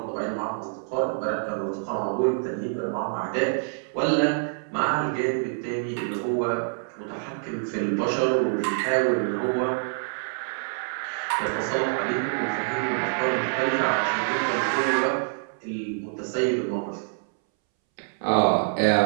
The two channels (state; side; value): silent; left; 61 dB below the other